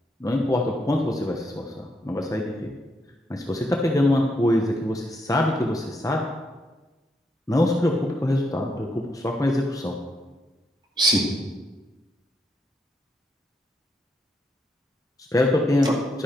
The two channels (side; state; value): both; normal; correlation 0.78